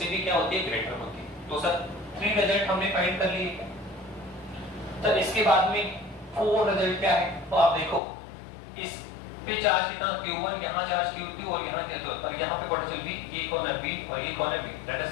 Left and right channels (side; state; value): right; drops out; at 8.0 s